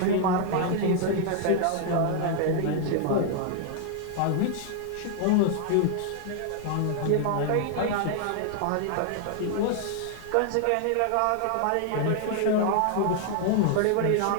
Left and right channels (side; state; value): both; different; correlation 0.00